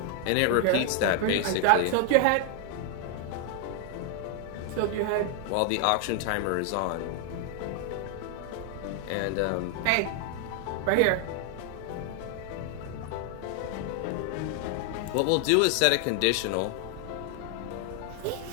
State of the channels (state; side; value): different; both; correlation 0.00